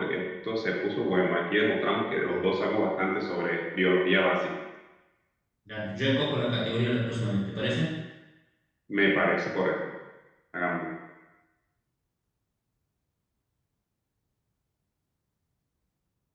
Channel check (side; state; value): both; identical; correlation 1.00